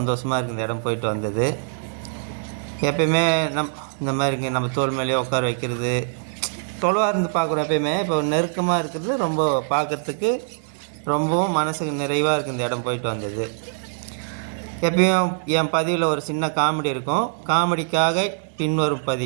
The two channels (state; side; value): silent; left; digital silence